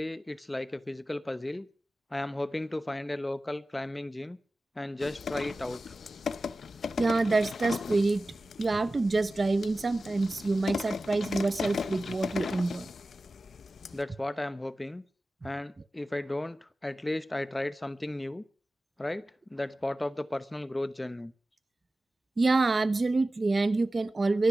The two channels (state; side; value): normal; both; correlation 0.95